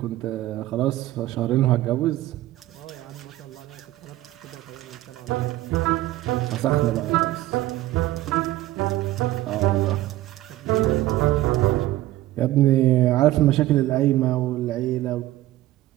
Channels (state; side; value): quieter; left; 15.8 dB